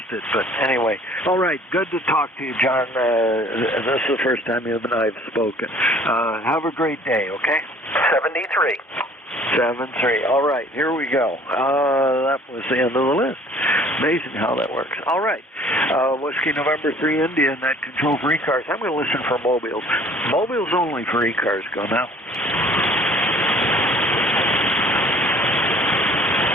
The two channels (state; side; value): normal; both; correlation 0.53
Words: it. But anyway, all right, good to talk to you, John. This is the first time you and I have spoken. Have a great day, okay? 73. 7-3. All right, here we go. That was the end of the list. Amazing how that works. All right. Whiskey November 3 India and that control for ECARS. I'm going to listen for mobiles. Mobiles only for ECARS. Go now.